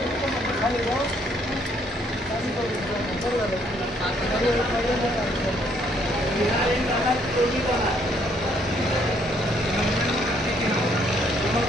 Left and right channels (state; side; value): normal; both; correlation 0.68